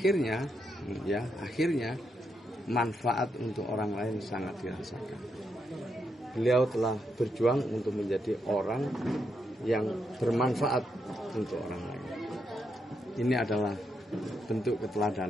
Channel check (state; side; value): normal; both; correlation 0.81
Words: manfaat untuk orang lain sangat dirasakan. Beliau telah berjuang untuk menjadi orang yang bermanfaat untuk orang lain. Ini adalah bentuk